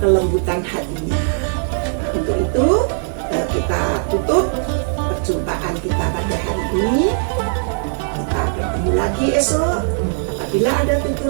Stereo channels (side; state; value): left; silent; digital silence